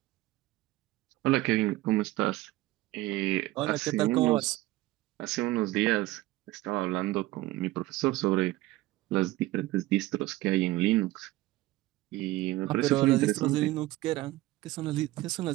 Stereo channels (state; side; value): quieter; left; 17.8 dB